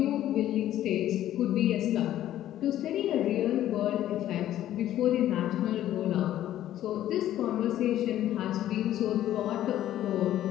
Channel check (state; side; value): quieter; right; 12.6 dB